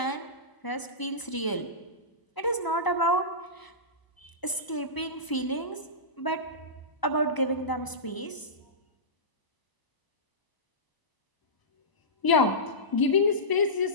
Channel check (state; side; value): late; right; 1.0 ms